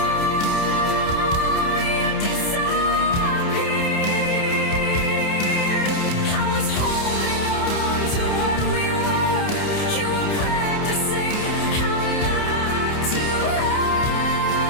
you disappeared. I was holding on to what we were. You were practicing how not to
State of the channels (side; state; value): right; late; 29 ms